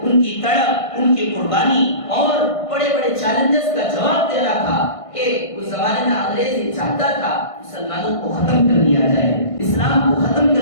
ان کی تڑپ، ان کی قربانی اور بڑے بڑے چیلنجز کا جواب دینا تھا کہ اس زمانے میں انگریز یہ چاہتا تھا مسلمانوں کو ختم کر دیا جائے، اسلام کو ختم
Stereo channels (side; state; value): right; late; 1.5 ms